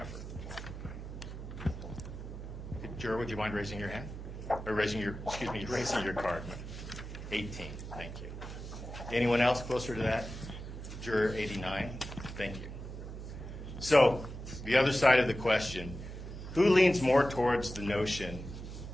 Juror, would you mind raising your hand? Or raising your card. 18, thank you. Anyone else closer to that? Juror 89, thank you. So, the other side of the question, Who leans more towards the notion,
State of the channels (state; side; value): noise; right; hum, 9 dB below the sound